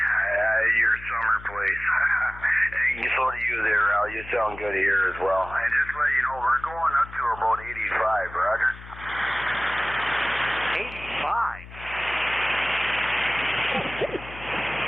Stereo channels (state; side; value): noise; left; hum, 16 dB below the sound